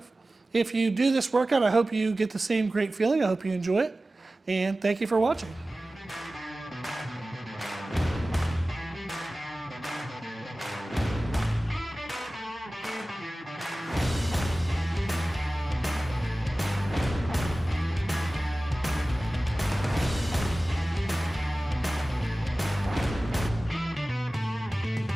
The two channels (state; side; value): normal; both; correlation 0.97